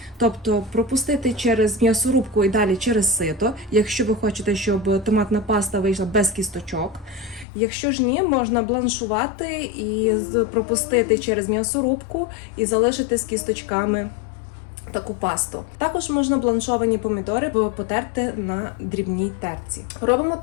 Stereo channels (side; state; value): right; drops out; at 7.5 s